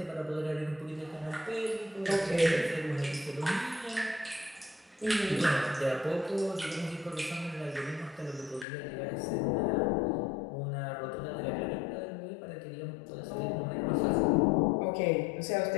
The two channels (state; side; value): drops out; right; at 8.7 s